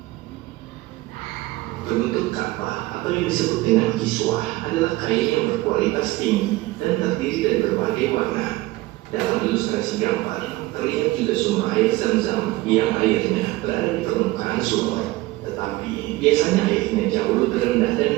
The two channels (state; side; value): quieter; left; 19.3 dB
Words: Penutup Ka'bah atau yang disebut dengan kiswah adalah kain yang berkualitas tinggi dan terdiri dari berbagai warna. Dalam ilustrasi gambar terlihat juga sumber air Zam-Zam yang airnya berada di permukaan sumur, tetapi biasanya airnya jauh lebih rendah